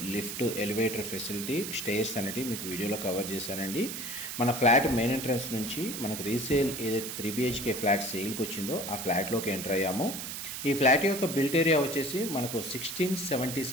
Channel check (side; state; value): right; noise; hiss, 6 dB below the sound